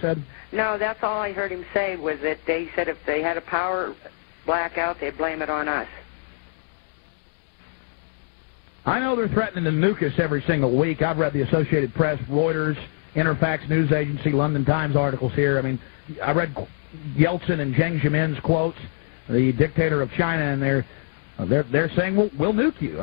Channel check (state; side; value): silent; right; digital silence